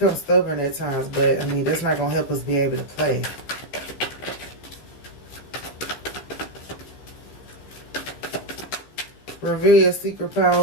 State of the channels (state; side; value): late; right; 15 ms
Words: stubborn at times, but I mean, that's not going to help us be able to play. Reveal your secret